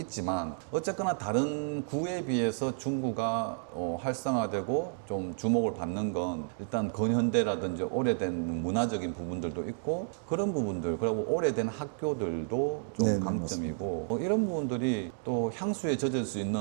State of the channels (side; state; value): left; silent; digital silence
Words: 어쨌거나 다른 구에 비해서 중구가 활성화되고 좀 주목을 받는 건 일단 근현대라든지 오래된 문화적인 부분들도 있고 그런 부분들 그리고 오래된 학교들도 좀 네, 강점이고 이런 부분들이 또 향수에 젖을 수